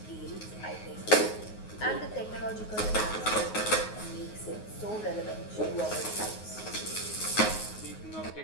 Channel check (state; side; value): late; right; 9.5 ms